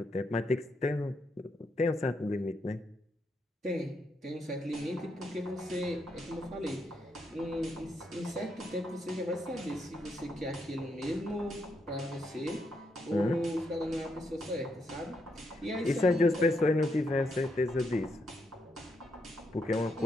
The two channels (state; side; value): normal; both; correlation 0.79